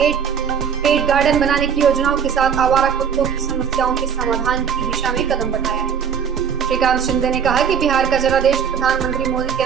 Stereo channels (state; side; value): quieter; left; 7.3 dB